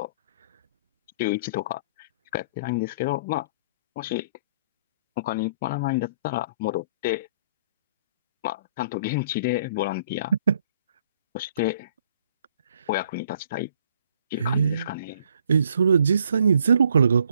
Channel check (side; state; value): both; inverted; correlation -0.60